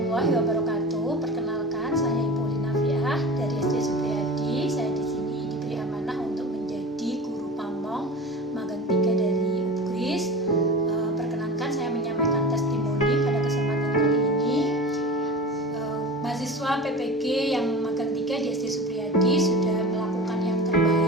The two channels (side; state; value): both; normal; correlation 0.33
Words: wabarakatuh. Perkenalkan, saya Ibu Linafiah dari SD Supriyadi. Saya di sini diberi amanah untuk menjadi guru pamong magang 3 dari UPGRIS. Perkenankan saya menyampaikan testimoni pada kesempatan kali ini. Mahasiswa PPG yang magang 3 di SD Supriyadi sudah melakukan yang